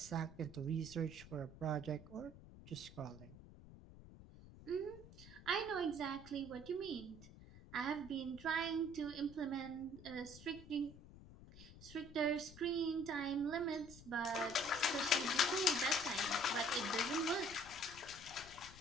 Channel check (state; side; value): noise; left; rumble, 17 dB below the sound